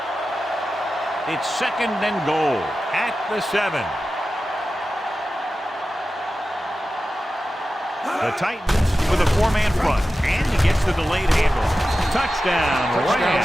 It's 2nd and goal at the 7. The Titans with a 4-man front, and he gets the delayed handle. Touchdown,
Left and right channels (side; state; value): both; normal; correlation 0.93